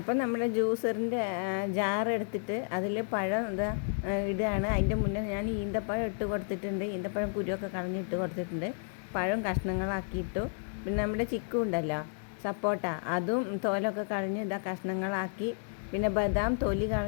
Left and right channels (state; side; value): silent; right; 57 dB below the other